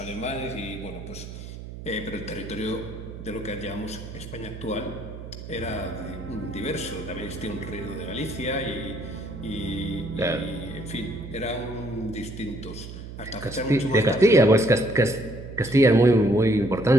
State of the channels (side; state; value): right; noise; hum, 11 dB below the sound